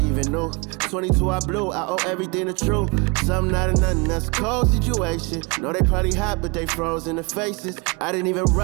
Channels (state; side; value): quieter; left; 28.9 dB